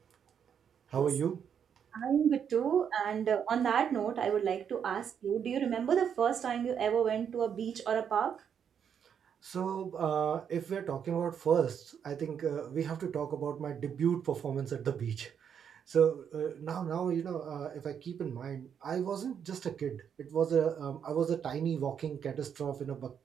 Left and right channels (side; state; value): left; quieter; 7.9 dB